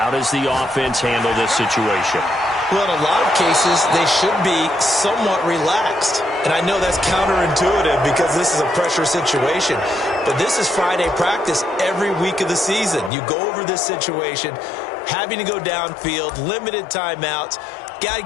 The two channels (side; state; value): right; drops out; at 13.1 s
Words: does the offense handle this situation? Well, in a lot of cases, they should be somewhat relaxed. And I know that's counterintuitive because this is a pressure situation. But this is Friday practice every week of the season. You go over this situation, having to go downfield, limited timeouts, got to